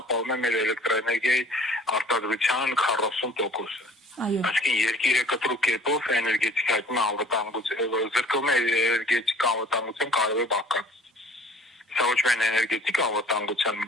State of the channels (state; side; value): normal; both; correlation 0.50